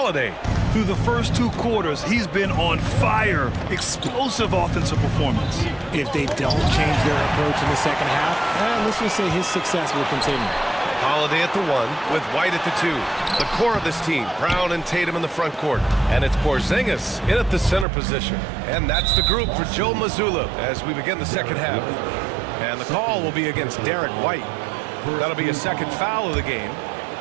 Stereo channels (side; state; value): left; drops out; at 17.9 s